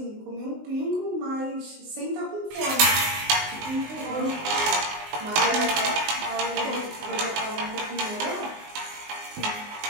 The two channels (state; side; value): late; left; 19 ms